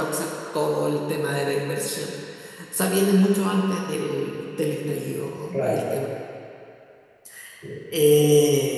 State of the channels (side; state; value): both; identical; correlation 1.00